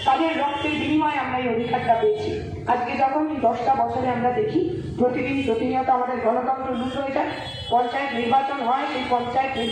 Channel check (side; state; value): both; identical; correlation 1.00